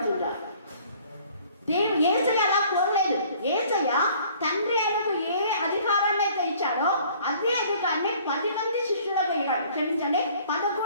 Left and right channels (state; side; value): inverted; both; correlation -0.55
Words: యేసయ్య అలా కోరలేదు. యేసయ్య తండ్రి ఆయనకు ఏ అధికారాన్ని అయితే ఇచ్చాడో అదే అధికారాన్ని 10 మంది శిష్యులకు ఇవ్వడు. క్షమించండి,